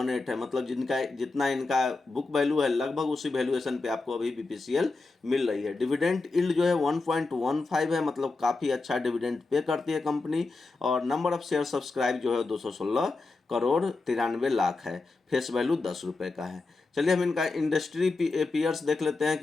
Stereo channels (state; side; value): quieter; right; 3.7 dB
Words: है, मतलब जितना इनका बुक वैल्यू है लगभग उसी वैल्यूएशन पे आपको अभी बीपीसीएल मिल रही है। डिविडेंड यील्ड जो है 1.15 है, मतलब काफ़ी अच्छा डिविडेंड पे करती है कंपनी, और नंबर ऑफ शेयर सब्सक्राइब जो है 216 करोड़ 93 लाख है, फेस वैल्यू 10 रुपये का है। चलिए हम इनका इंडस्ट्री पीयर्स देख लेते हैं